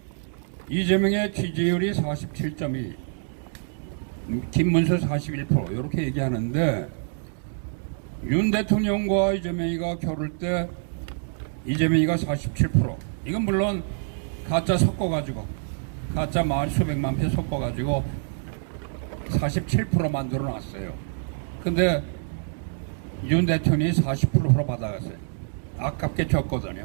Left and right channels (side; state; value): left; silent; digital silence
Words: 이재명의 지지율이 47.2, 김문수 41% 이렇게 얘기하는데 윤 대통령과 이재명이가 겨룰 때 이재명이가 47%. 이건 물론 가짜 섞어가지고 가짜 수백만 표 섞어가지고 47% 만들어 놨어요. 근데 윤 대통령이 40% 받아갔어요. 아깝게